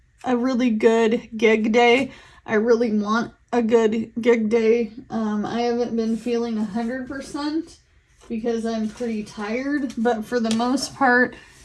a really good gig day. I really want a good gig day. I haven't been feeling 100% because I'm pretty tired, but for the most part,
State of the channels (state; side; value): identical; both; correlation 1.00